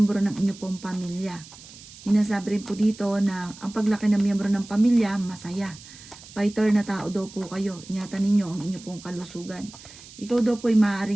ng inyo pong pamilya. Inasabi rin po dito na ang paglaki ng miyembro ng pamilya, masaya. Fighter na tao daw po kayo. Ingatan ninyo ang inyo pong kalusugan. Ikaw daw po ay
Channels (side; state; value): right; noise; hiss, 18 dB below the sound